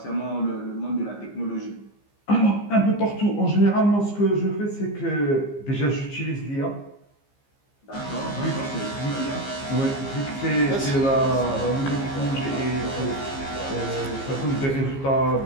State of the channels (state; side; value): late; right; 15 ms